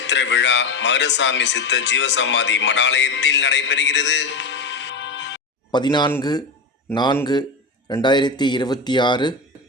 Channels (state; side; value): quieter; right; 3.4 dB